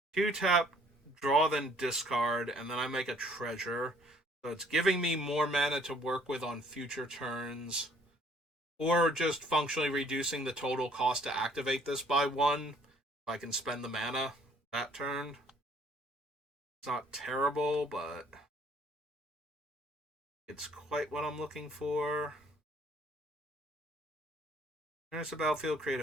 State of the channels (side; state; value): both; normal; correlation 0.60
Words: 2-tap, draw, then discard, and then I make a treasure. So it's giving me more mana to work with on future turns. Or just functionally reducing the total cost to activate this by 1. If I can spend the mana that turn. It's not terrible, but it's quite what I'm looking for. There's a battlefield, create